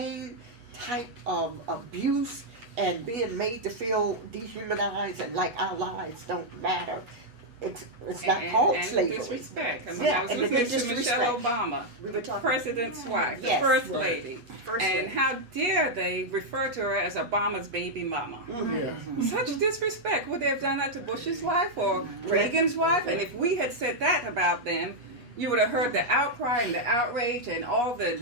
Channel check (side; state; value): left; late; 8.2 ms